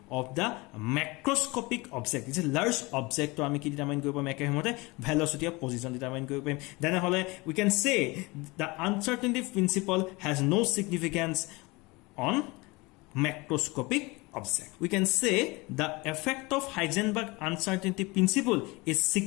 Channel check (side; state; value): right; quieter; 24.3 dB